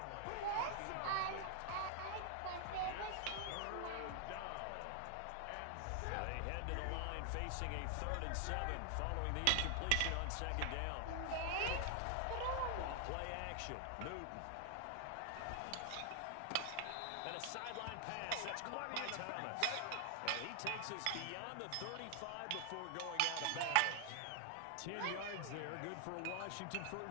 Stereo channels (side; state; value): both; different; correlation 0.00